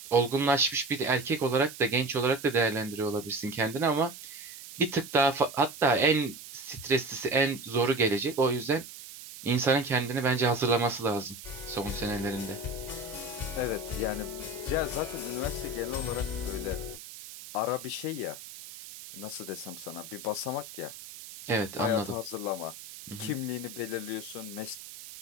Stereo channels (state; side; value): noise; right; hiss, 14 dB below the sound